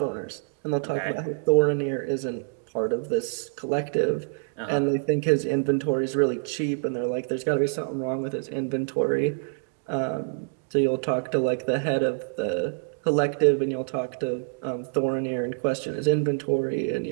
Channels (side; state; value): left; silent; digital silence